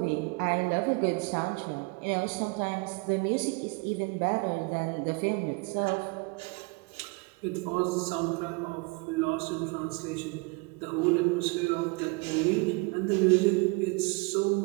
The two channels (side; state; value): left; quieter; 28.7 dB